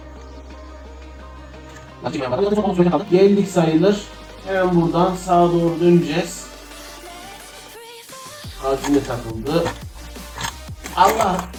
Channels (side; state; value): both; identical; correlation 1.00